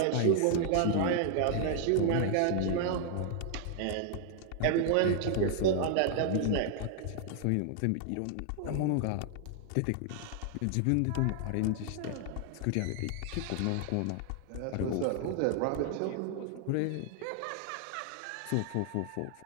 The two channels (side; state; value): both; different; correlation 0.00